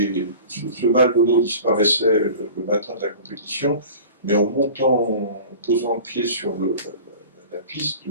ce mal de dos disparaissait le matin de la compétition, mais en montant, en posant le pied sur la piste,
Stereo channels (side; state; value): both; inverted; correlation -0.40